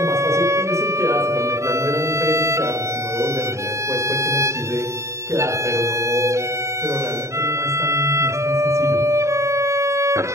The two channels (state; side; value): late; left; 0.14 ms